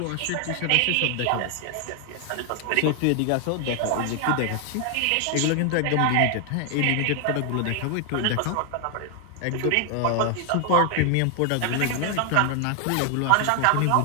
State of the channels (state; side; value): different; both; correlation 0.00